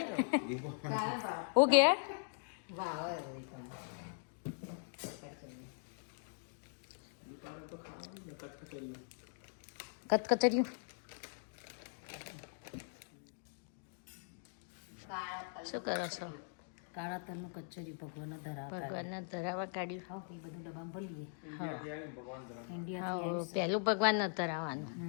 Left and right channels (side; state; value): right; silent; digital silence